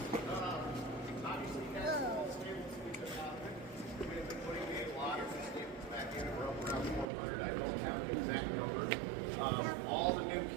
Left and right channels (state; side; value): drops out; left; at 7.1 s